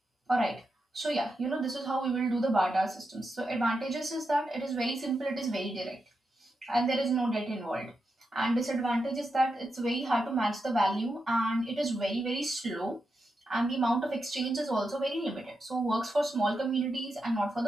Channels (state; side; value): normal; both; correlation 0.87